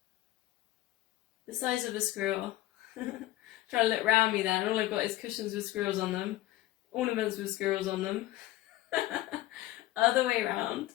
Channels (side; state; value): right; quieter; 16.0 dB